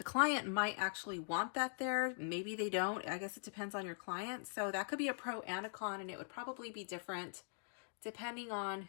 client might actually want that there. Maybe they don't. I guess it depends on your client. So that could be a pro and a con, and it would probably be different depending on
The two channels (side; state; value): right; silent; digital silence